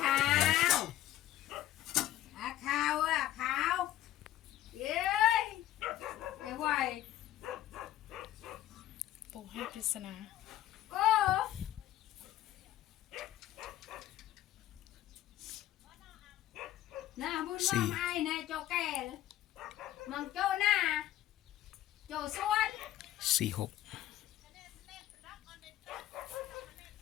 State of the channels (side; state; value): right; quieter; 13.5 dB